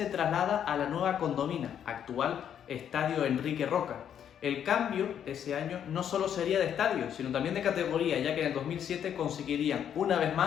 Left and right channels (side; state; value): right; quieter; 9.1 dB